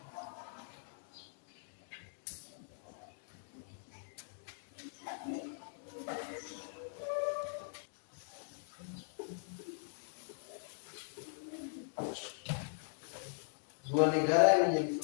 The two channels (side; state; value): right; silent; digital silence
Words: dua negara yang menjadi